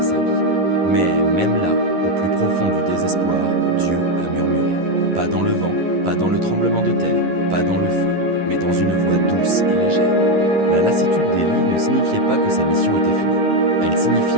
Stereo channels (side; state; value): left; late; 11 ms